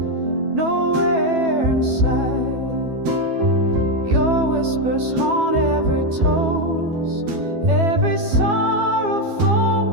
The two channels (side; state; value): left; late; 12 ms